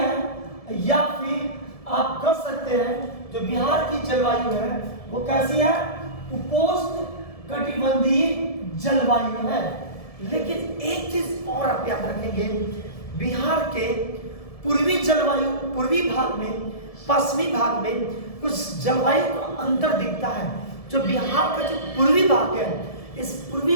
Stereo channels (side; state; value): right; late; 1.7 ms